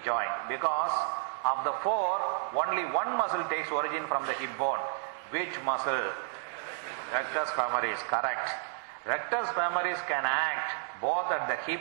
joint, because of the four, only one muscle takes origin from the hip bone. Which muscle? Rectus femoris, correct. Rectus femoris can act both at the hip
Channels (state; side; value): silent; left; digital silence